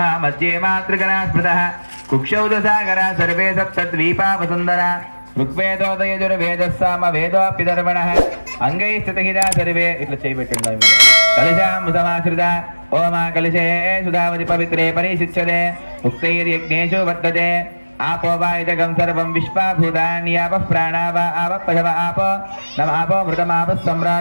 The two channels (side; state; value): both; inverted; correlation -1.00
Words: మధ్యే మాతృగణా స్మృతః కుక్షౌ దశాగరా సర్వే సప్తద్వీపా వసుందర ఋగ్వేదోదయజుర్వేదస్సామ వేదోప్యధర్మణః అంగై స్థితహితా సర్వే. ఇట్లా చేయబెట్టండి. కలశామృతమాశ్రిత ఓమా కలశే సుధావతి పవిత్రే పరిశిచ్యతే ఉక్తైర్యజ్ఞేషు వర్తతే आपो वा इदगं सर्वं विश्वाभूतान्यापः प्राणा वा आपः पशव आपो नम आपो मृतमापः